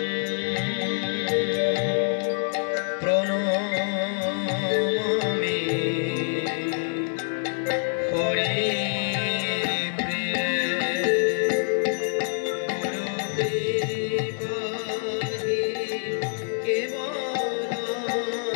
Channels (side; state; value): right; silent; 61 dB below the other